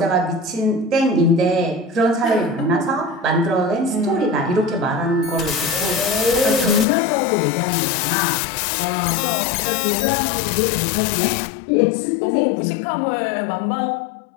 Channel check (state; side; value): drops out; right; at 6.9 s